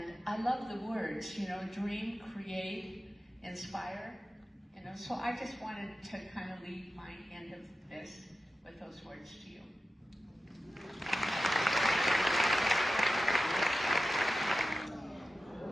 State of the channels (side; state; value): both; normal; correlation 0.93